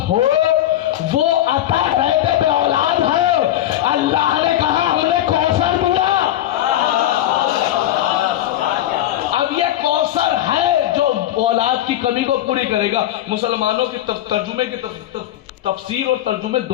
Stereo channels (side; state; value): right; quieter; 13.0 dB